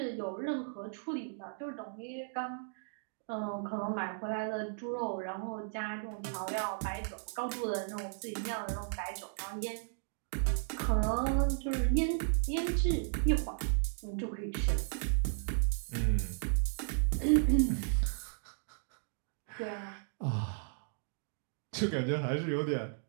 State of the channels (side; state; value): left; silent; digital silence